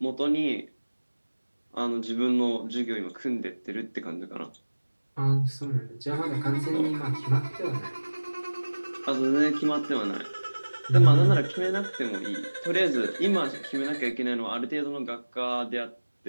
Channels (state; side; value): inverted; both; correlation -1.00